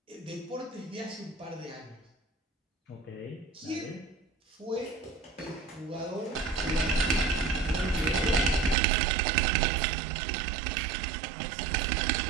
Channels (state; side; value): drops out; left; at 8.8 s